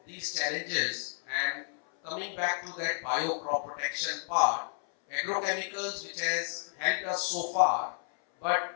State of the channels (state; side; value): silent; right; 57 dB below the other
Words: these challenges and coming back to that bio crop protection part, agrochemicals which has helped us so far,